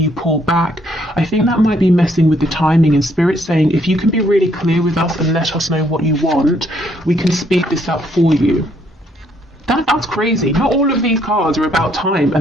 you pull back, I think that might be messing with the timing. And Spirit saying if you can be really clear with us and let us know what you want, we can speed this up for you. That's crazy. Not all of these cards are about time,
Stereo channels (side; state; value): both; normal; correlation 0.69